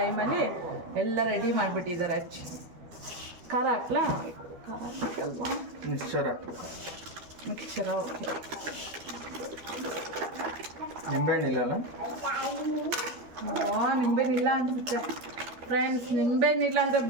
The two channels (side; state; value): left; late; 12 ms